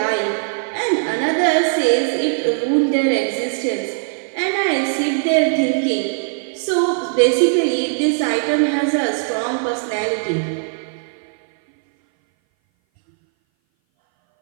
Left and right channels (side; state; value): left; silent; 59 dB below the other